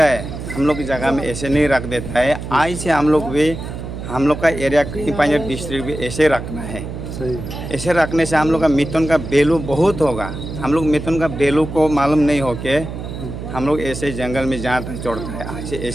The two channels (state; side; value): noise; right; hum, 8 dB below the sound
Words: है। हम लोग की जगह में ऐसे नहीं रख देता है। आज से हम लोग भी, हम लोग का एरिया कहीं पंजाब डिस्ट्रिक्ट भी ऐसे रखना है। ऐसे रखने से हम लोग का मिथुन का वैल्यू बहुत होगा। हम लोग मिथुन का वैल्यू को मालूम नहीं हो के हम लोग ऐसे जंगल में जहाँ तक छोड़ता है, ऐसे